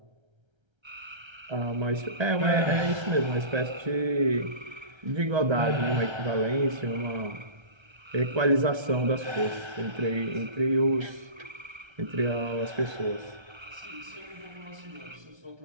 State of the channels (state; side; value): late; left; 1.3 ms